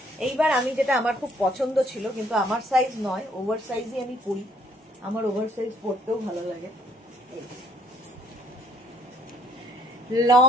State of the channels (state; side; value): normal; both; correlation 0.64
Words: এইবার আমি যেটা আমার খুব পছন্দ ছিল, কিন্তু আমার সাইজ নয়, ওভার সাইজই আমি পরি, আমার ওভার সাইজ পরতেও ভালো লাগে।